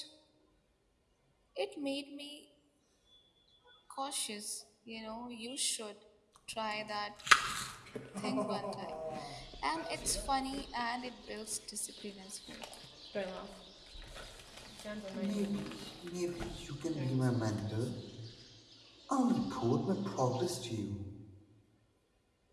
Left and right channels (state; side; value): identical; both; correlation 1.00